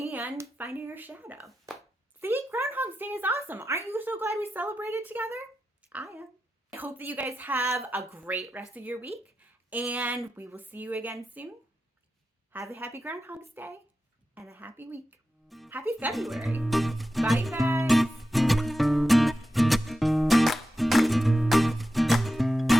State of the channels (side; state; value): both; normal; correlation 0.91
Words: finding your shadow. See, Groundhog's Day is awesome. Aren't you so glad we celebrated together? I am. I hope that you guys have a great rest of your week, and we will see you again soon. Have a happy Groundhog's Day and a happy week. Happy February. Bye, you guys.